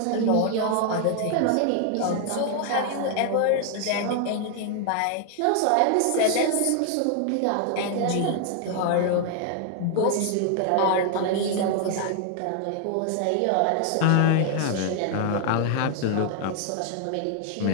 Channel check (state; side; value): different; both; correlation 0.00